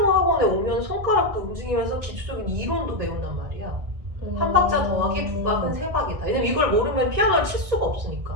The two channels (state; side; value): late; left; 1.6 ms